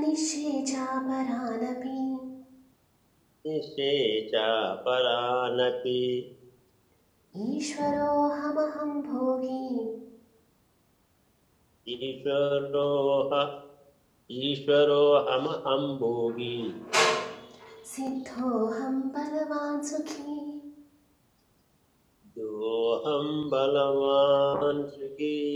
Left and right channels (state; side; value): identical; both; correlation 1.00